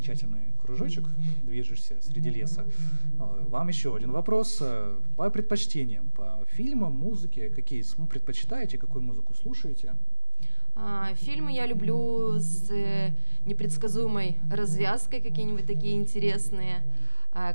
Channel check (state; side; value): inverted; both; correlation -1.00